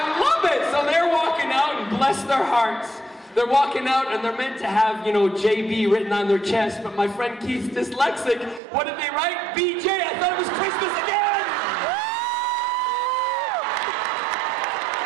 love it! So they're walking out, and bless their hearts. They're walking out and they're meant to have, you know, JB written on their chest, but my friend Keith's dyslexic. What did they write? BJ! I thought it was Christmas again!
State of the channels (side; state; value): left; drops out; at 8.6 s